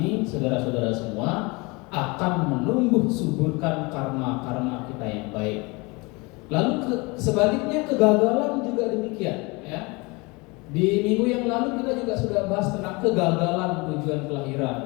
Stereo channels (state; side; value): quieter; right; 26.4 dB